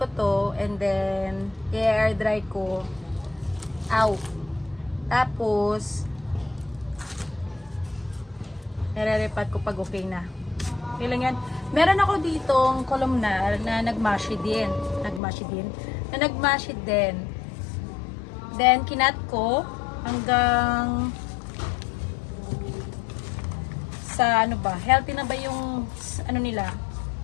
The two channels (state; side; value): drops out; right; at 15.2 s